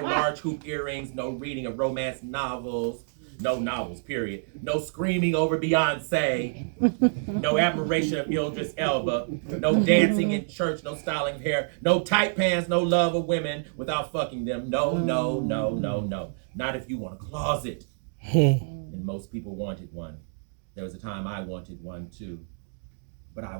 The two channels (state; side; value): silent; left; digital silence